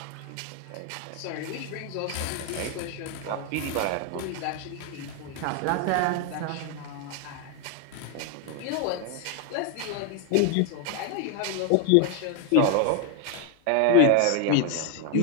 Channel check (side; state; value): both; different; correlation 0.01